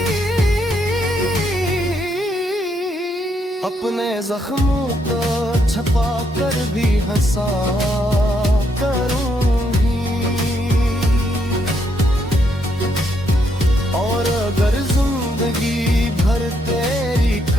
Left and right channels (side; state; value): both; normal; correlation 0.75